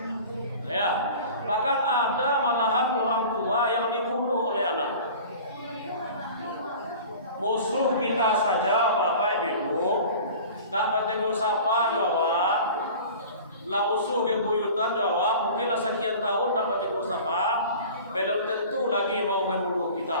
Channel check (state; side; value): inverted; both; correlation -0.41